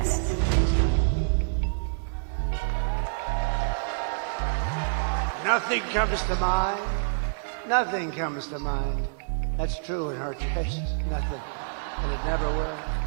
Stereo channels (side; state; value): left; silent; digital silence